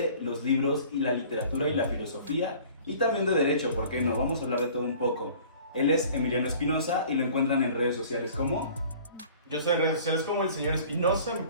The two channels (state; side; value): inverted; both; correlation -0.48